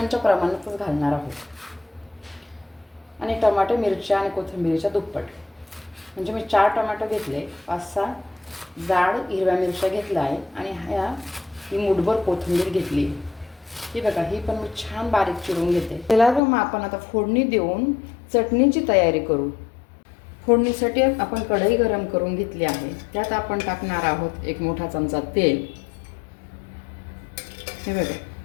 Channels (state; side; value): drops out; right; at 16.4 s